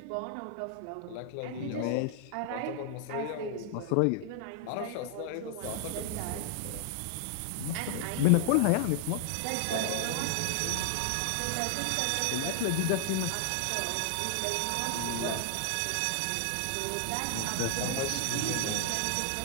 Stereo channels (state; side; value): different; both; correlation 0.00